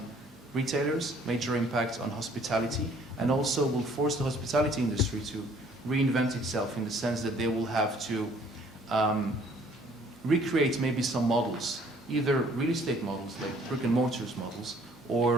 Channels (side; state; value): both; normal; correlation 0.59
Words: retailers, major impact on hospitality, and also will force the hospitality industry to reinvent itself in the sense that they will have to recreate maybe some models, either real estate models like brick and mortars models